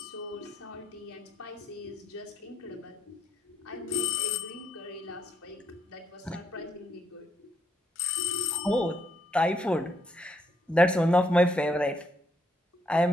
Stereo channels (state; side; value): normal; both; correlation 0.74